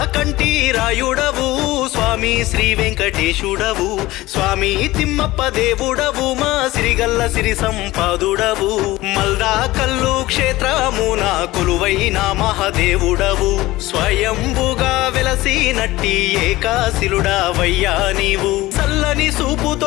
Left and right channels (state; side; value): quieter; right; 18.3 dB